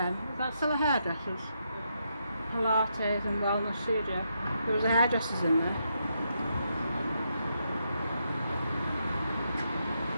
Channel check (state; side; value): inverted; both; correlation -0.80